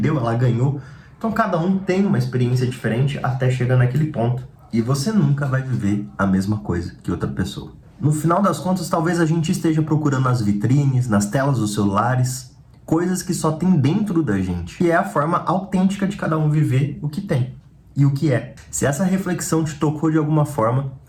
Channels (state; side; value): identical; both; correlation 1.00